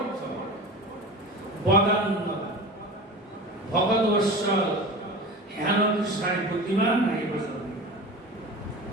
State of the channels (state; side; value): normal; both; correlation 0.33